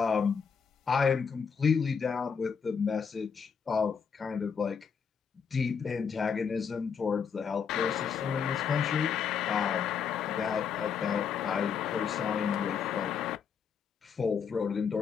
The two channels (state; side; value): quieter; right; 6.6 dB